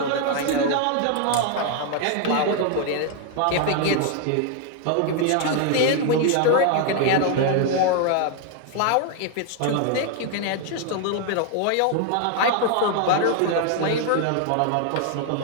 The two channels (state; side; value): different; both; correlation 0.00